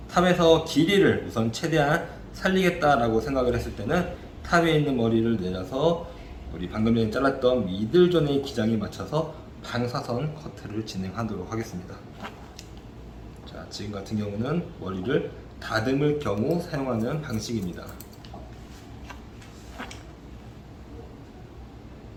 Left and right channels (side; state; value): both; identical; correlation 1.00